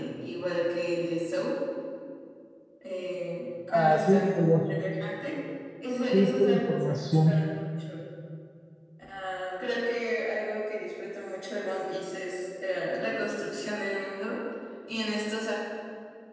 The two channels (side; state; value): both; identical; correlation 1.00